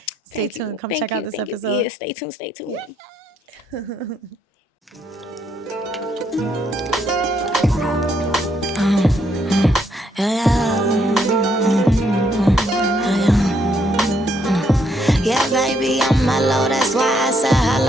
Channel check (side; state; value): both; normal; correlation 0.73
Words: stay tuned. Come check out this episode. Yeah, stay tuned. Yeah, baby, I'm mellow. That's why I said